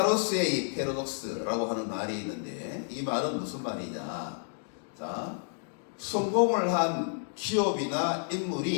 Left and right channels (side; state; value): right; silent; digital silence